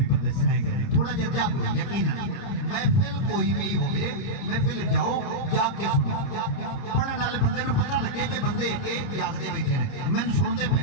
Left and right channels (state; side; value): late; right; 30 ms